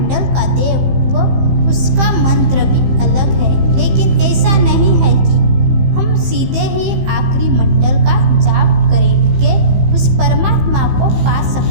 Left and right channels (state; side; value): late; left; 15 ms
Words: का देव व उसका मंत्र भी अलग है, लेकिन ऐसा नहीं है कि हम सीधे ही आखिरी मंडल का जाप करके उस परमात्मा को पा